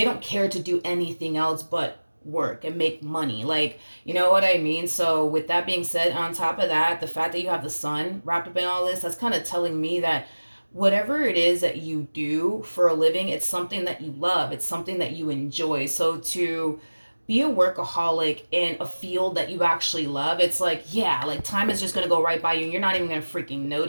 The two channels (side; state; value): both; inverted; correlation -1.00